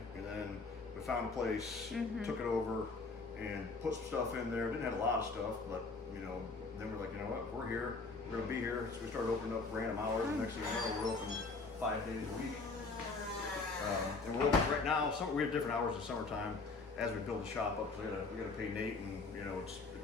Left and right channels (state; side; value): quieter; right; 3.9 dB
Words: and then we found a place, took it over, and put some stuff in there. Didn't have a lot of stuff, but you know, then we're like, you know what, we're here, we're gonna be here. So we started opening up random hours. And next thing you know, we're open 5 days a week. And we're open right now. We have different hours in summertime as we build the shop up. So we gotta pay Nate, and you know,